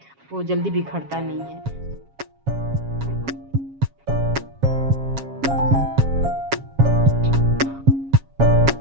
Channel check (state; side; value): late; left; 7.3 ms